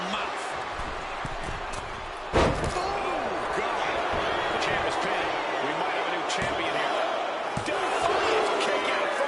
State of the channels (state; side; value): identical; both; correlation 1.00